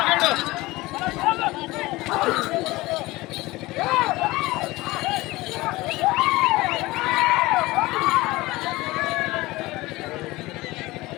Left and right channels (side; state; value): right; quieter; 20.1 dB